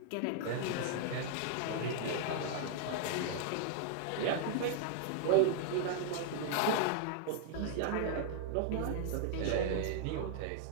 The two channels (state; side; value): different; both; correlation -0.01